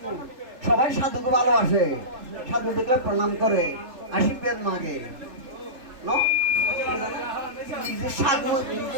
সবাই সাধুকে ভালোবাসে, সাধু দেখলে প্রণাম করে, আশীর্বাদ মাগে। নিজের সাধু,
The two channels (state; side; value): late; left; 3.3 ms